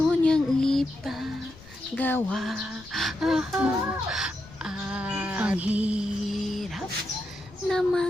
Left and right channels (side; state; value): left; noise; rumble, 22 dB below the sound